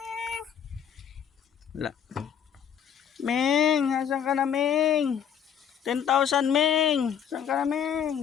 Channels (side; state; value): right; quieter; 8.4 dB